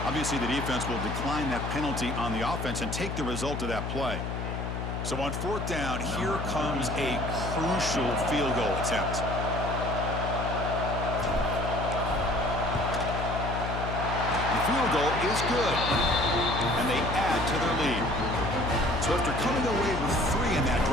Obviously, the defense will decline that penalty on the offense and take the result of that play. So on 4th down, here comes a crucial field goal attempt. The field goal is good, and they add to their lead. So after coming away with 3 in that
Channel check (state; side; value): noise; left; hum, 4 dB below the sound